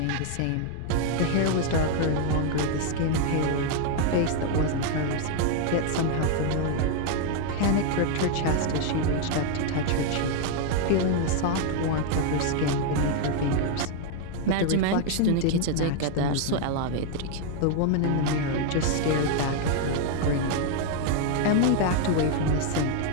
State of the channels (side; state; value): both; different; correlation 0.00